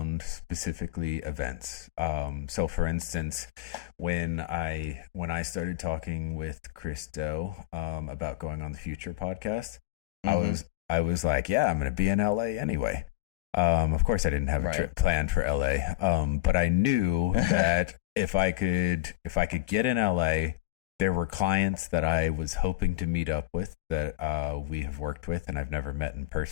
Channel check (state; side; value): quieter; right; 17.5 dB